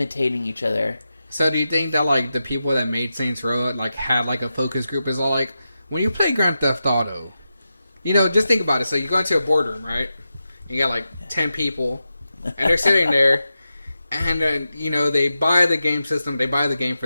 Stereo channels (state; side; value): inverted; both; correlation -0.90